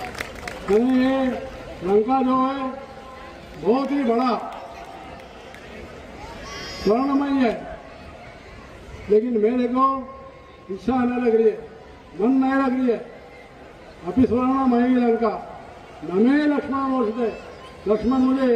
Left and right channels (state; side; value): identical; both; correlation 1.00